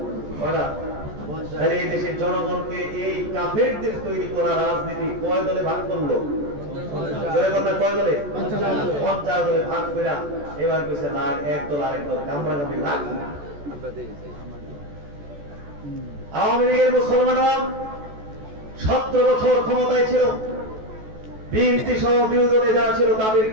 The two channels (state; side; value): late; left; 14 ms